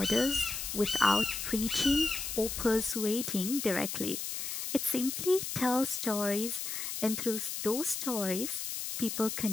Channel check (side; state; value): left; noise; hiss, 4 dB below the sound